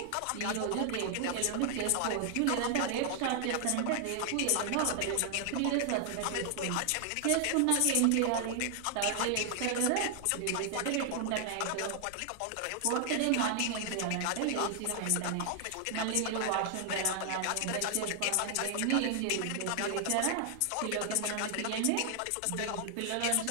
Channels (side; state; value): both; different; correlation 0.00